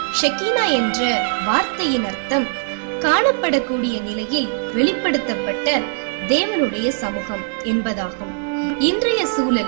ஷெக்கீனா என்ற வார்த்தையின் அர்த்தம் காணப்படக்கூடிய நிலையில் வெளிப்படுத்தப்பட்ட தேவனுடைய சமூகம் என்பதாகும். இன்றைய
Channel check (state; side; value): silent; left; 66 dB below the other